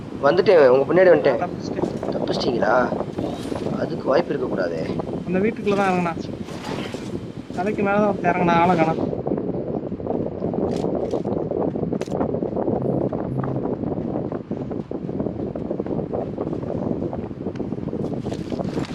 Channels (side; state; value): both; identical; correlation 1.00